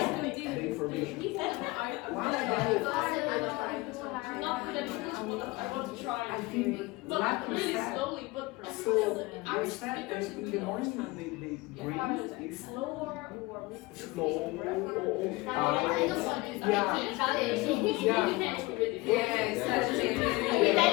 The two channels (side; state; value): right; quieter; 22.7 dB